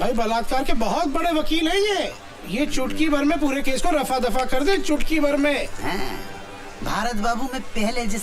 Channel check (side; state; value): both; identical; correlation 1.00